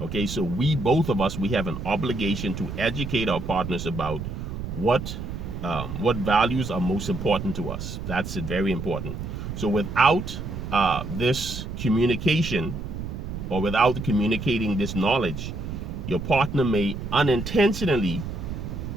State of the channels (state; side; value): noise; right; rumble, 7 dB below the sound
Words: Okay, so both of us, we have an obligation to educate our partners about what values are most important to us. That's very important. So without this communication, or without communicating this knowledge, your partner may unintentionally